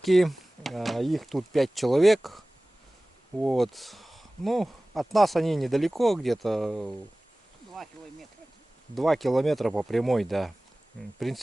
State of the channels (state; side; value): normal; both; correlation 0.98